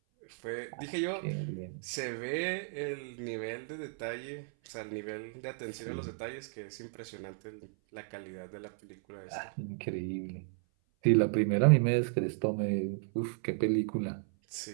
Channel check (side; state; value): left; silent; 55 dB below the other